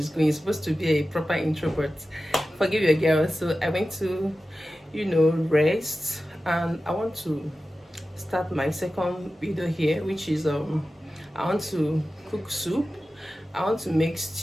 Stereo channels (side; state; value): both; normal; correlation 0.94